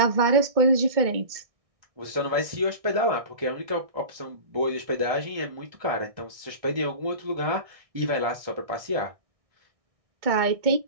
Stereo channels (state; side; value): late; left; 1.6 ms